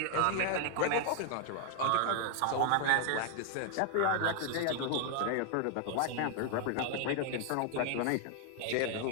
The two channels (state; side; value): different; both; correlation 0.00